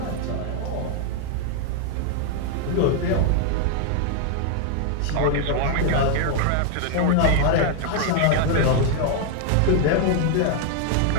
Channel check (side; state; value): both; different; correlation 0.00